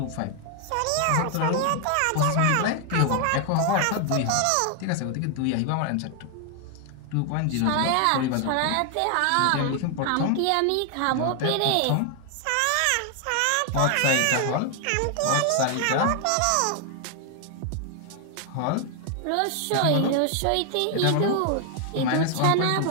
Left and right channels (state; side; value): different; both; correlation 0.00